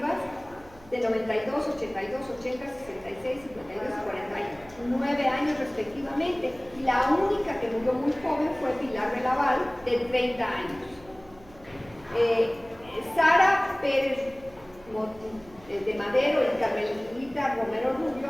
de 92, 82, 80, 66, 52 y 49 años respectivamente. Y la única que murió muy joven fue Pilar de Laval, de 30 años. Sara Pérez de Madero y Carmelita Romero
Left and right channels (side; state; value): right; noise; hum, 24 dB below the sound